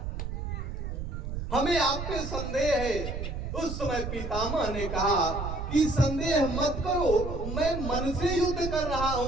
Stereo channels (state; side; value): noise; right; rumble, 5 dB below the sound